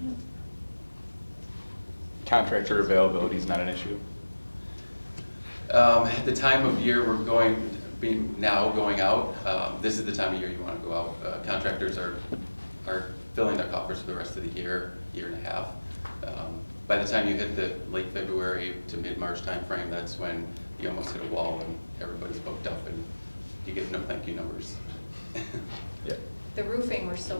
Contractor availability is not an issue? At the time of year we're going out, this is the time of year you want to go out. Contractors are filling their coffers for the rest of the year and a half. By the time you hit the late February to mid-March timeframe, that's when you almost hit a wall and everybody's booked up and you get no thank you numbers. Yeah. The roofing, we're still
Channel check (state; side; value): inverted; both; correlation -1.00